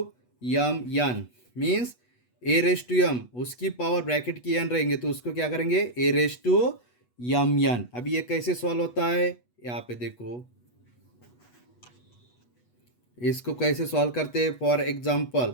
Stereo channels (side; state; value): right; late; 8.2 ms